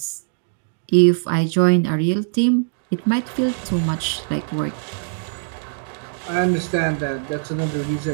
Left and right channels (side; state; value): left; silent; digital silence